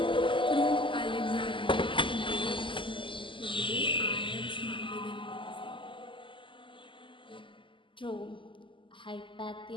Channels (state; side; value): late; right; 0.25 ms